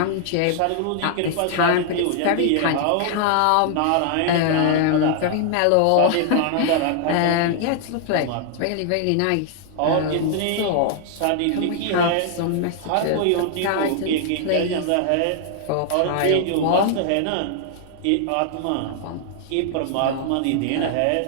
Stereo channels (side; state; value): both; different; correlation 0.00